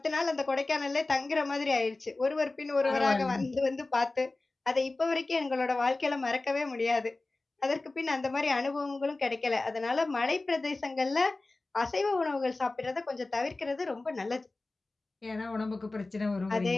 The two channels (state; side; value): quieter; right; 3.2 dB